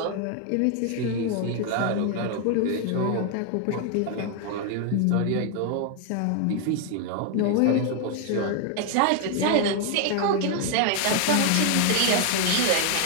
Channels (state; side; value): different; both; correlation 0.00